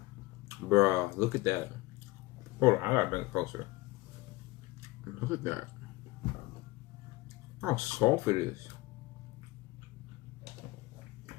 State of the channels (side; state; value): right; quieter; 20.6 dB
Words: Bruh, look at that. Hold on, I gotta bring it closer. Look at that. How soft it is.